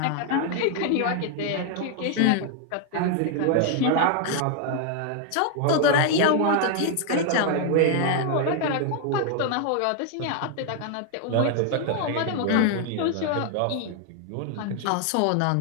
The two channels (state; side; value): different; both; correlation 0.00